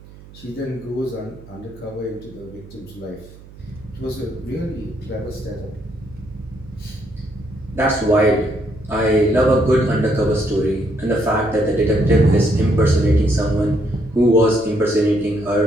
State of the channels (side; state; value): right; noise; hum, 20 dB below the sound